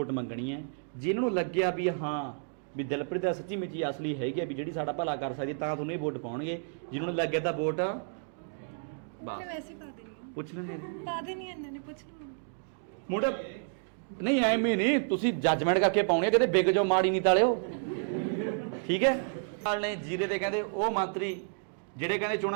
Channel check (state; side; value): silent; left; digital silence